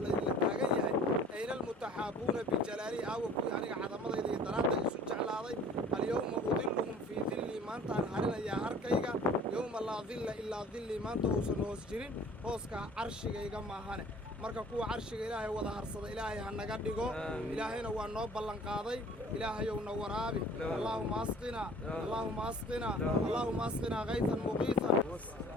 اللي تاقنيا أين المتحابون بجلالي أوكو يعني عظمة إذا درادة يسوع جعلها اليوم أظلهم في ظلي ما أنت أنهارنا يا أركيغا يوم لا ظل إلا ظلي ما أنت أوسن هوسجرين هوسكا عرشيغا إيغا ماهانه marka kuwa carshiga ilaahay wada harsada ilaahay ha naga dhigo ilaahayna waa noo ballan qaaday ilaahayow na waraabi allahumma asqina allahumma asqina allahumma asqina ghaythan muqiithan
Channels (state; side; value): normal; both; correlation 0.49